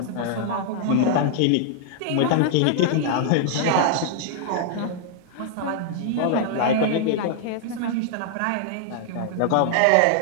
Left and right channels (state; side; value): different; both; correlation -0.01